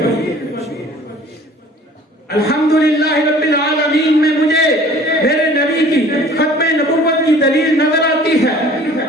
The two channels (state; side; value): normal; both; correlation 0.49